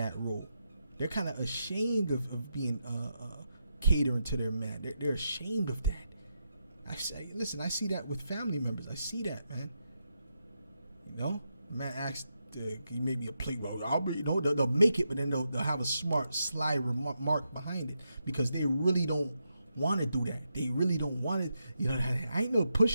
role. They're kind of ashamed of being catering to their man. They're ashamed of that. I see that with family members. I see that, man. You know, man asked, "Can you make me a plate?" Well, they'll make it, but then they'll have a smart, sly remark behind it because they really don't want to do that. They really don't want it. You know, I ain't no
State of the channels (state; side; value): inverted; both; correlation -0.84